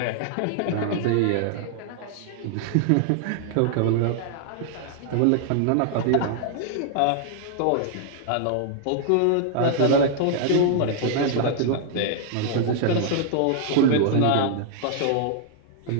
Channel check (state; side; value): different; both; correlation -0.01